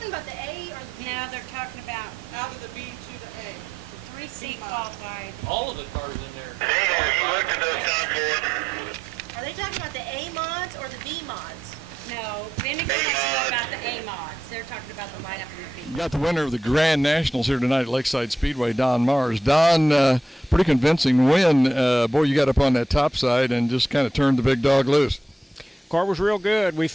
about the A or the B? No, they're talking about Out of the B to the A. the 3C qualified. All of the cars in there. Hey, have you looked at those top boards? Are they talking about the A mods or the B mods? No, Vinegar wants to know about the A mods. They're talking about the lineup in the B. You got the winner of the Grand Nationals here tonight at Lakeside Speedway, Don Mars. Don, pretty convincing win. Boy, you got up on that top side and just kind of turned the big dog loose. Car was real good. We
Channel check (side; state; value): both; normal; correlation 0.85